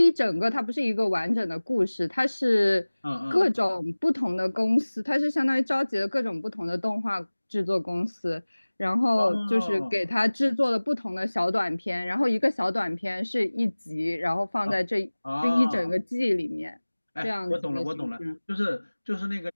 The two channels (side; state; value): both; inverted; correlation -1.00